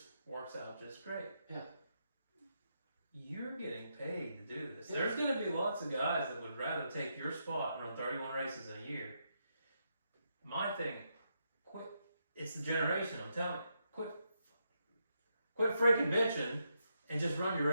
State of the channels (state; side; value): inverted; both; correlation -0.81